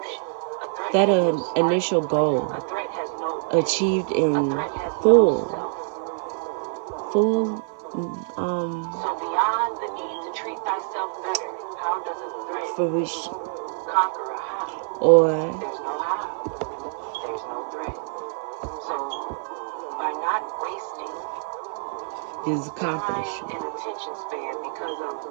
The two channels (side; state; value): left; silent; 57 dB below the other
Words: achieved in full fruition, or his accomplishment.